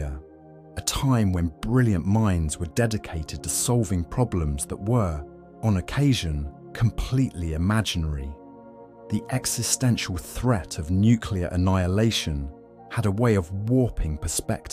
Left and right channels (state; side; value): identical; both; correlation 1.00